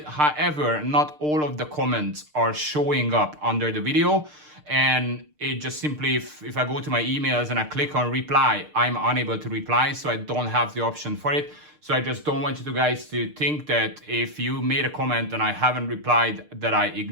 However, not all of the comments are showing up under the video. And it just simply, if I go to my emails and I click on reply, I'm unable to reply, so I don't have the option for it. So I just don't want you guys to think that if you made a comment and I haven't replied, that I'm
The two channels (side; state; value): left; late; 6.6 ms